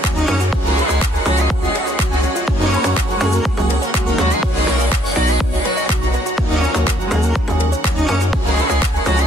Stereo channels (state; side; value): normal; both; correlation 0.68